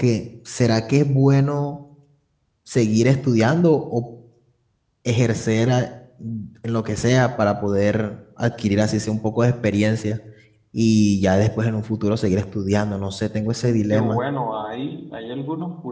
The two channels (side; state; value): both; identical; correlation 1.00